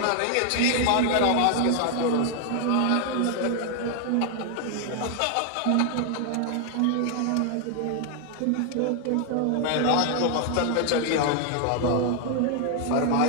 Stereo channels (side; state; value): both; different; correlation 0.00